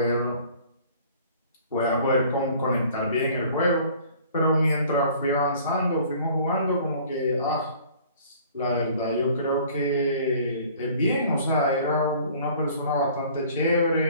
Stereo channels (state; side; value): inverted; both; correlation -0.51